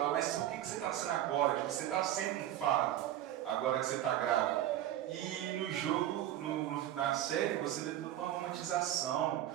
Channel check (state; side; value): quieter; left; 12.5 dB